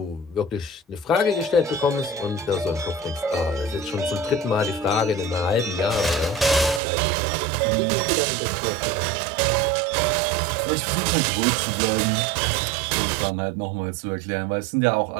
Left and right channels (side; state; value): left; drops out; at 6.8 s